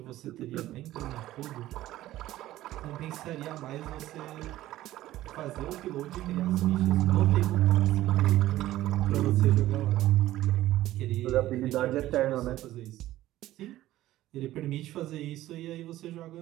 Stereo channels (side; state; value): left; quieter; 15.0 dB